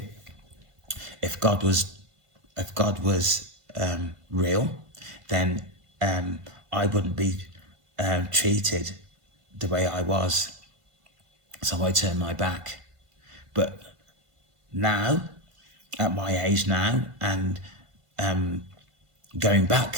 if God was real, then I wouldn't be treated the way I was. So I turned my back. But now, at my age now, and going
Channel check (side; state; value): left; late; 1.5 ms